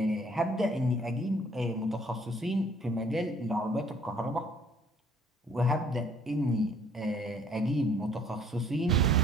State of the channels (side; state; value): both; normal; correlation 0.58